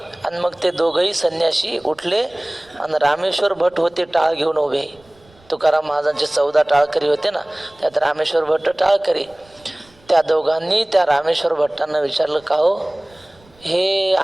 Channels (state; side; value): noise; right; rumble, 30 dB below the sound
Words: आणि मग ते दोघंही संन्यासी उठले आणि रामेश्वर भट होते टाळ घेऊन उभे. तुकाराम महाराजांचे 14 टाळकरी होते ना, त्यात रामेश्वर भट्ट टाळकरी. त्या दोघांनी त्या रामेश्वर भट्टांना विचारलं, का हो हे